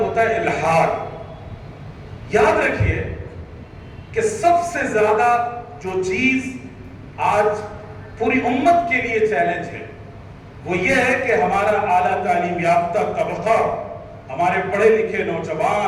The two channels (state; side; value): identical; both; correlation 1.00